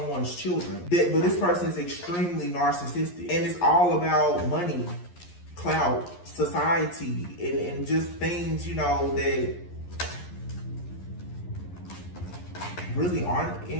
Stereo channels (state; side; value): late; right; 11 ms